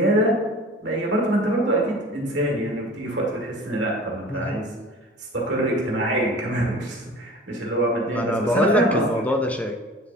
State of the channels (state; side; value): normal; both; correlation 0.41